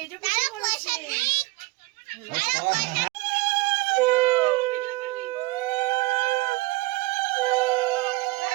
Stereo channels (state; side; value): quieter; left; 22.4 dB